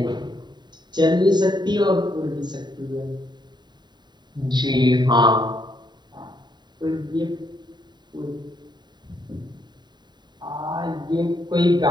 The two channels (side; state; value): left; late; 0.21 ms